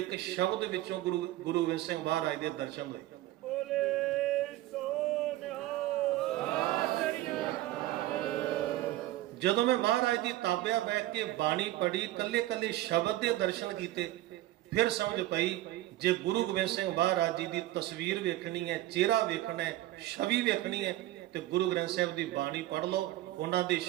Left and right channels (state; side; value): quieter; left; 15.8 dB